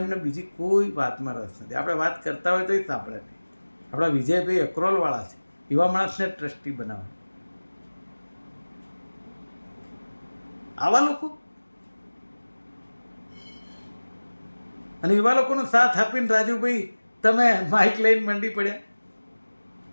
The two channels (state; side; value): inverted; both; correlation -1.00